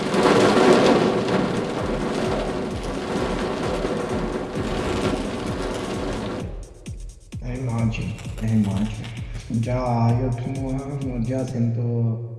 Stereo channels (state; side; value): identical; both; correlation 1.00